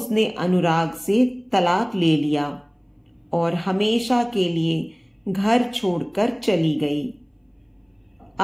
अनुराग से तलाक ले लिया और हमेशा के लिए घर छोड़कर चली गई।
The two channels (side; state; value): both; identical; correlation 1.00